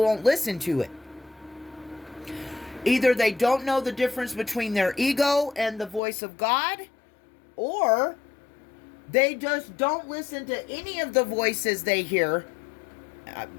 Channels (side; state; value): right; drops out; at 6.0 s